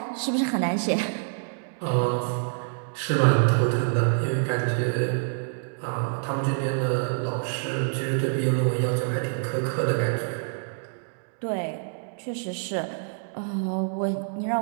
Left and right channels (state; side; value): silent; left; digital silence